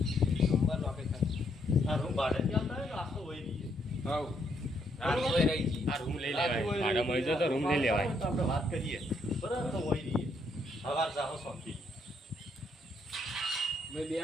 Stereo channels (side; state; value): both; normal; correlation 0.73